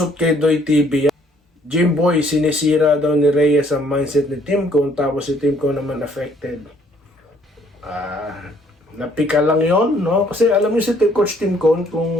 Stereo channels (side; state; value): both; normal; correlation 0.63